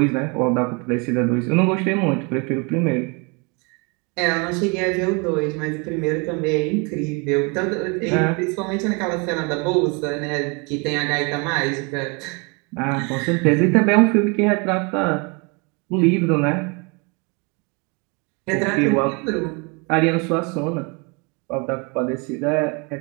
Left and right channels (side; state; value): left; quieter; 31.1 dB